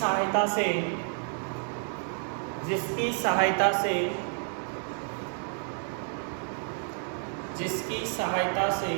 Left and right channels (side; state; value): left; silent; 56 dB below the other